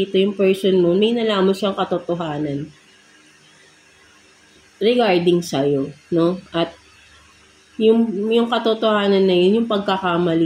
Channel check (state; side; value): identical; both; correlation 1.00